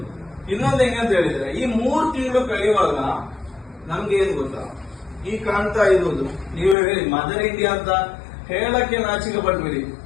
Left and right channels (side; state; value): right; drops out; at 6.8 s